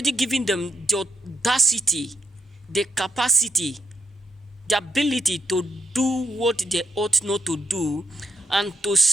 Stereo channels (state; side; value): normal; both; correlation 0.77